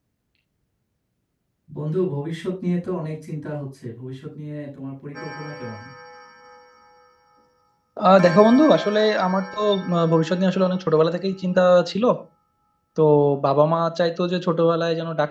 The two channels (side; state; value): both; identical; correlation 1.00